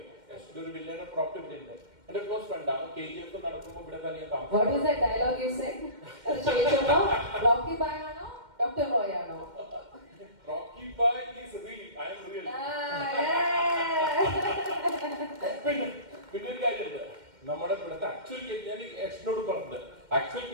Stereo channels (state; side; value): late; left; 2.1 ms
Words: എന്റെ ഒരു വില്ലയുടെ പ്രോപ്പർട്ടി ഇവിടെ ഉണ്ട്. എന്റെ ക്ലോസ് ഫ്രണ്ട് ആണ്. KGF നടക്കുമ്പോൾ ഇവിടെ തന്നെ ഞാൻ താമസിക്കും. What is that dialogue you said? അത് ചോദിച്ചപ്പോ Rocky Bhai ആണോ ഡോക്ടർ റോയ് ആണോ? Rocky Bhai is real. I am real. പിന്നെ ഒരു കാര്യമുണ്ട്. നമ്മുടെ ഇവിടുത്തെ ആക്ച്വൽ ഞാൻ എഷ്നോട് പറഞ്ഞത് ആക്ച്വൽ